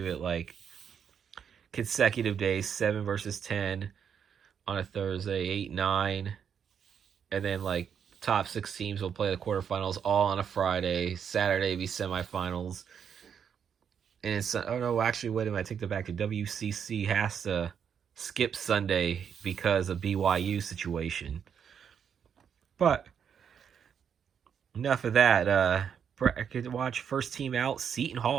it like consecutive days, 7 versus 10 on a Thursday, 8, 9, and then like top 6 teams will play the quarterfinals all on a Friday. Saturday be semifinals. And it's, oh no, actually, wait a minute, I take that back. The WCC has to skip Sunday because of BYU situation. But enough of that. Bracket watch, first team out, Seton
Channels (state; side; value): quieter; left; 7.7 dB